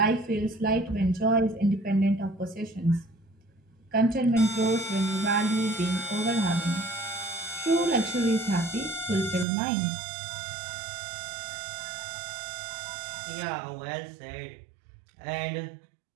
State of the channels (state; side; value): drops out; left; at 9.5 s